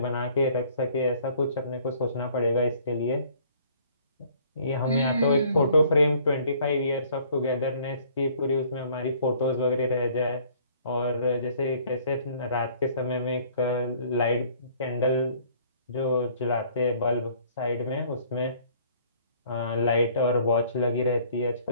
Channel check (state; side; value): inverted; both; correlation -0.57